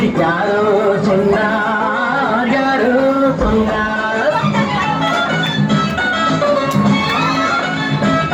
யாரோ சொன்னார், யாரோ சொன்னார்.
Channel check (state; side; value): identical; both; correlation 1.00